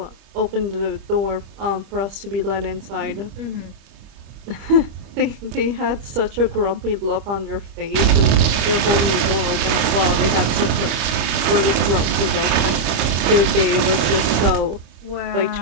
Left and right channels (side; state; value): left; late; 25 ms